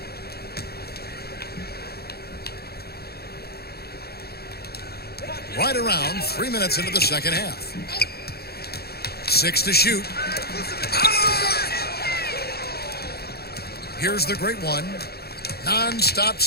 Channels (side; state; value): right; late; 0.46 ms